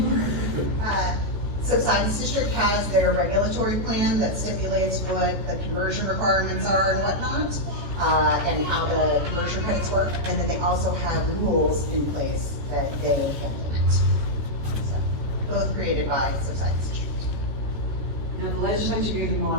Subsidence District has their regulatory plan that stipulates what the conversion requirements are and whatnot, and how the conversion credits work, and then they also have rules in place that they implement. So, both created by Subsidence District. Now, the legislature gave them a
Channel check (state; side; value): late; left; 14 ms